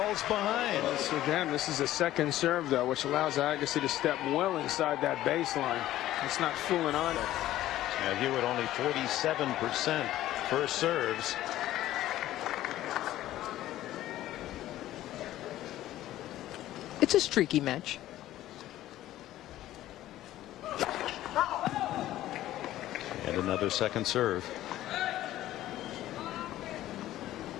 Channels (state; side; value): quieter; right; 14.2 dB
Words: behind. So again, this is a second serve, though, which allows Agassi to step well inside that baseline. It's not fooling on it. Now Hewitt only 47% first serves. It's a streaky match. And another second serve.